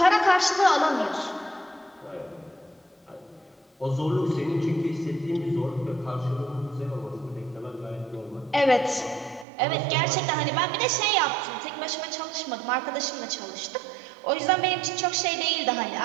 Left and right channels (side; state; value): left; drops out; at 9.5 s